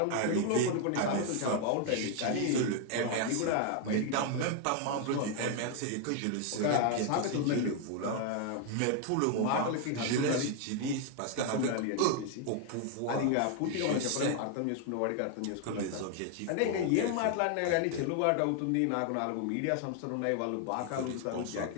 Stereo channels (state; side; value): different; both; correlation 0.00